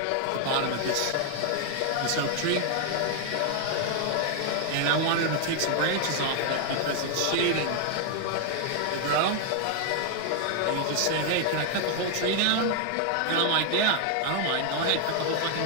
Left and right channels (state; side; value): different; both; correlation 0.00